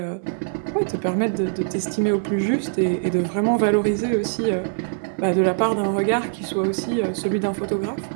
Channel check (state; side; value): silent; left; digital silence